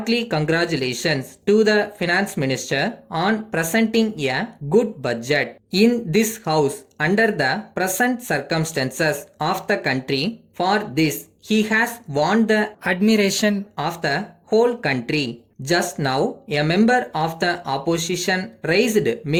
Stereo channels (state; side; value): identical; both; correlation 1.00